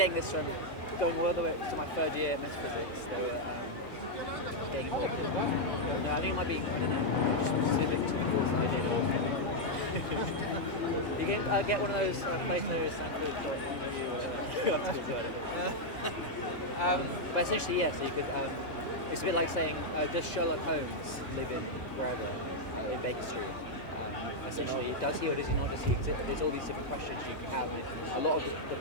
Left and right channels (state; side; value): late; right; 2.0 ms